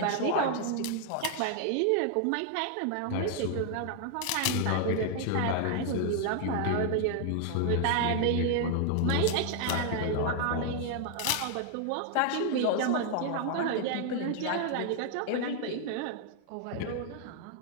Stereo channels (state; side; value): different; both; correlation 0.00